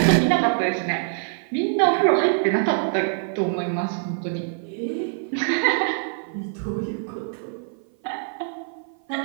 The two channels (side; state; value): left; silent; 55 dB below the other